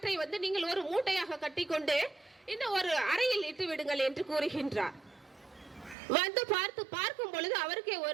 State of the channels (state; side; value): drops out; left; at 6.0 s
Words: நீங்கள் ஒரு மூட்டையாக கட்டிக்கொண்டு இந்த ஒரு அறையில் இட்டு விடுங்கள் என்று கூறுகின்றார். பார்க்கும் பொழுது அவருக்கே